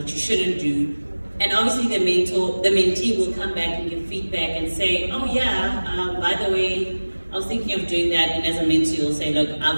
you shouldn't do. And obviously the mentee will come back and give feedback and say, oh yeah, by the way, I was thinking of doing that. And as a mentee, you'll say, look,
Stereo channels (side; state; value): both; inverted; correlation -1.00